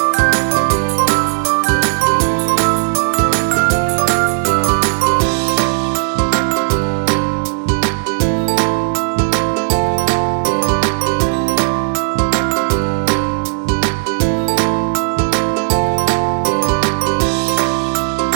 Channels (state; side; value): silent; left; digital silence